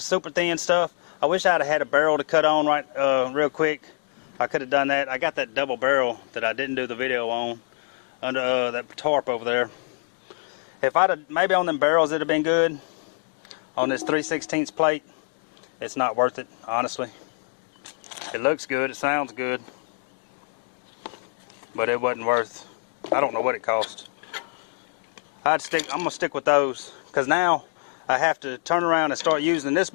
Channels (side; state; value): right; silent; 56 dB below the other